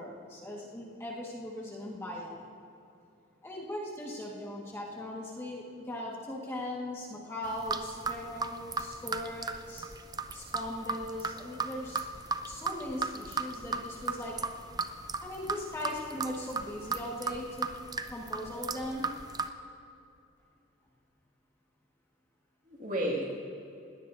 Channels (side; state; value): both; normal; correlation 0.20